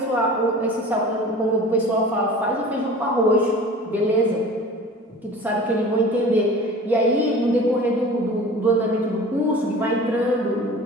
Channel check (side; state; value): both; normal; correlation 0.41